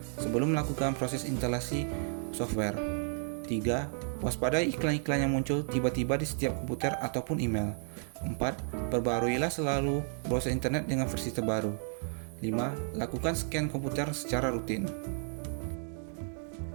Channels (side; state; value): left; silent; 56 dB below the other